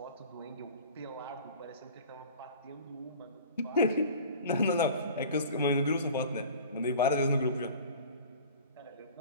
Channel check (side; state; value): both; inverted; correlation -0.42